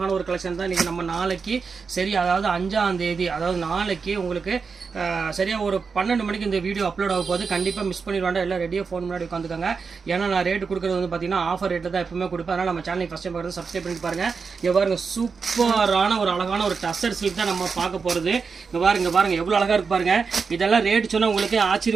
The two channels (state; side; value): quieter; left; 5.2 dB